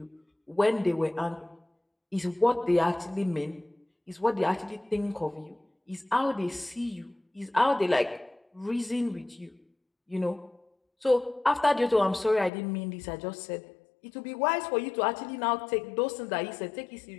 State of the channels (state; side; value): drops out; right; at 12.5 s